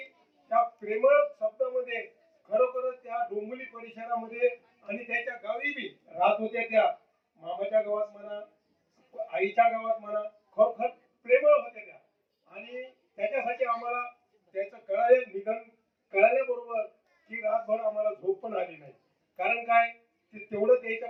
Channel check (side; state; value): both; identical; correlation 1.00